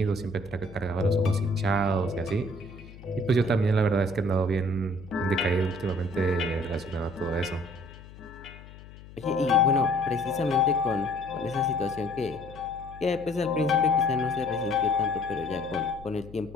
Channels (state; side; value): noise; left; hum, 18 dB below the sound